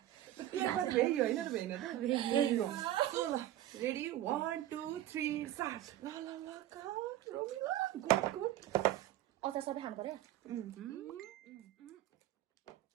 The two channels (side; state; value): left; quieter; 13.3 dB